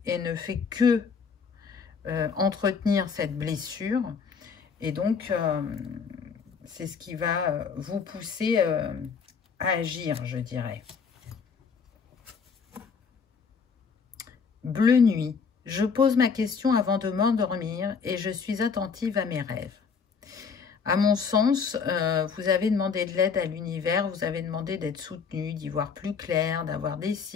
et ne fait que entretenir cette blessure. Et donc, c'est ce qui va vous pousser à agir, je dirais. Bleu nuit. Je pose ma question avant de m'endormir et je suis attentive à mes rêves. À mon sens, vous avez demandé de l'aide à l'univers, vous avez demandé d'être soutenu, d'y voir plus clair, d'avoir des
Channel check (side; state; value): right; quieter; 5.8 dB